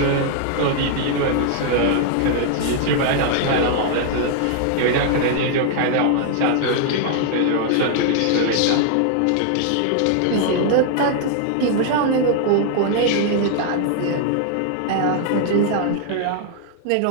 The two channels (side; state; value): both; different; correlation 0.00